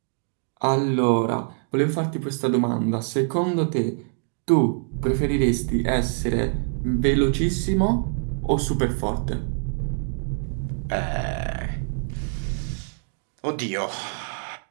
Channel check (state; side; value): silent; left; digital silence